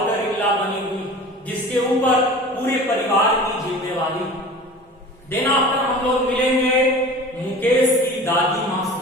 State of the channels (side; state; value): both; normal; correlation 0.39